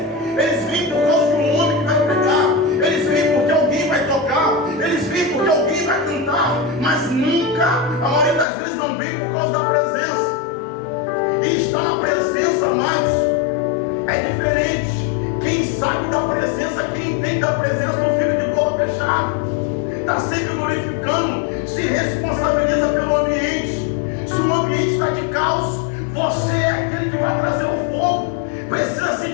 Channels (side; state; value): right; drops out; at 8.5 s